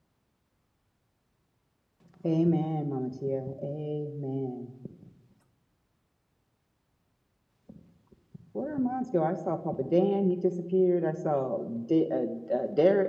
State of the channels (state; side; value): identical; both; correlation 1.00